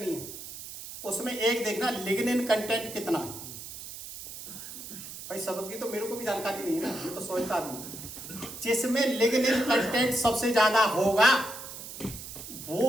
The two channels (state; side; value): noise; right; hiss, 11 dB below the sound